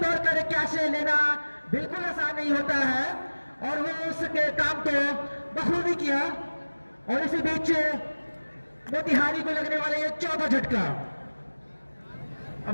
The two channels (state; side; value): inverted; both; correlation -1.00